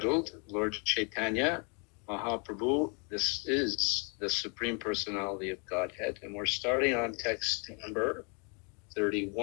Lord Chaitanya Mahaprabhu. This is the Supreme Personality of Godhead, and we're starting on text number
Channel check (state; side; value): quieter; right; 35.3 dB